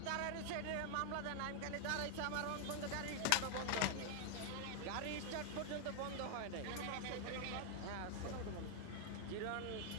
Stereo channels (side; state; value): both; different; correlation 0.00